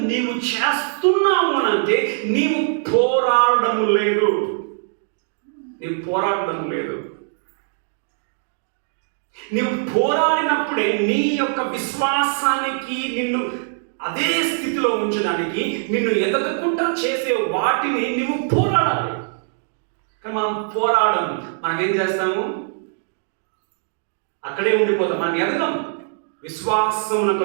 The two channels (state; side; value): silent; left; digital silence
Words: నీవు చేస్తున్నావు అని అంటే నీవు పోరాడడం లేదు. నీవు పోరాడినప్పుడే నీ యొక్క విశ్వాసానికి నిన్ను అదే స్థితిలో ఉంచడానికి, నిన్ను ఎదగకుండా చేసే వాటిని నీవు పోరాడాలి. కానీ మనం పోరాడము. మనం ఏం చేస్తాము? అక్కడే ఉండిపోతాం. మనం ఎదగం. విశ్వాసమున